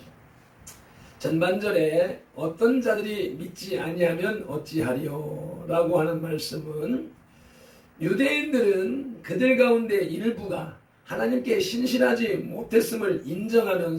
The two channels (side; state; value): both; identical; correlation 1.00